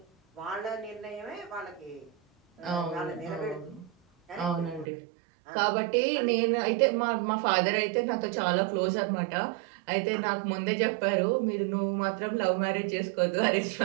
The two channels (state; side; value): drops out; left; at 4.9 s